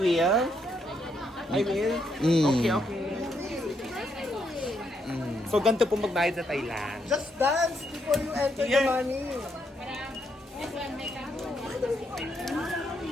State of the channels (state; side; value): normal; both; correlation 0.76